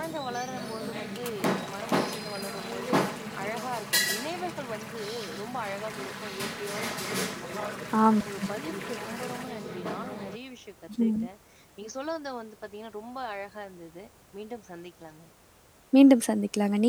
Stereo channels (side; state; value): both; identical; correlation 1.00